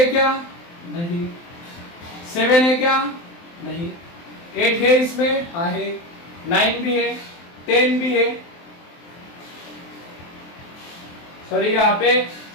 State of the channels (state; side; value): late; right; 23 ms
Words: क्या? नहीं। 7 है क्या? नहीं। 8 है इसमें? हाँ है। 9 भी है, 10 भी है, सॉरी यहाँ पे